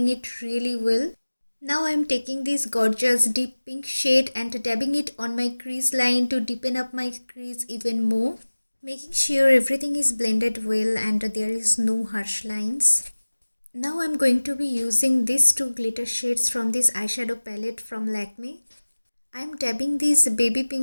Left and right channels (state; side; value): inverted; both; correlation -1.00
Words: it really well. Now I'm taking this gorgeous deep pink shade and dabbing it on my crease line to deepen up my crease even more, making sure everything is blended well and there is no harsh lines. Now I'm going to be using these two glitter shades from this eyeshadow palette from Lakmé. I'm dabbing this baby